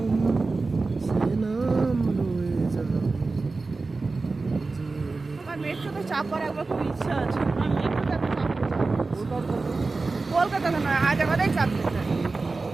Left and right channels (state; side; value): quieter; left; 3.8 dB